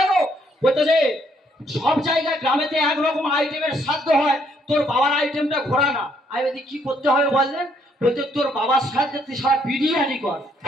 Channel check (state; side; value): normal; both; correlation 0.69